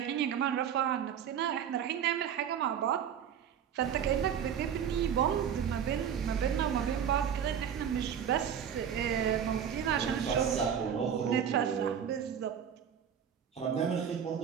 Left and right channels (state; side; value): quieter; left; 8.4 dB